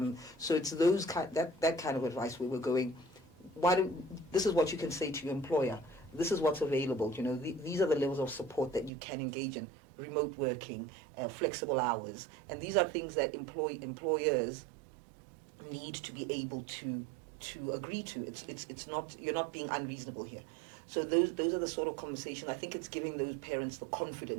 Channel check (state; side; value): drops out; left; at 8.9 s